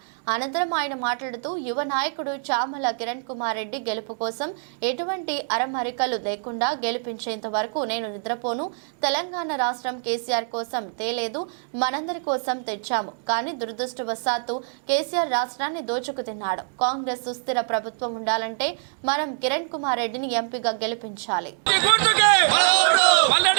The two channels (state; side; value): silent; left; digital silence